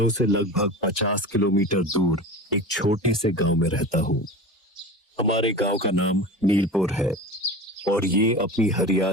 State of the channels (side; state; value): both; normal; correlation 0.32